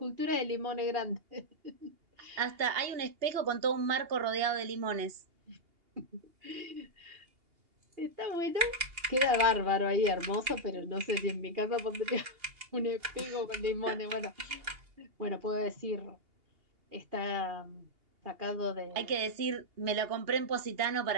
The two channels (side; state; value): left; late; 2.8 ms